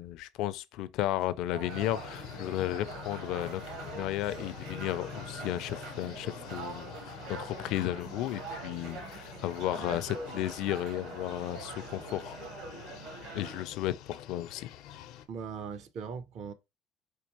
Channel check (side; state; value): right; quieter; 8.9 dB